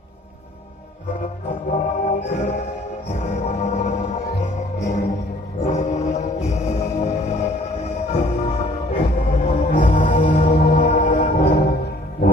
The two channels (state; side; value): normal; both; correlation 0.57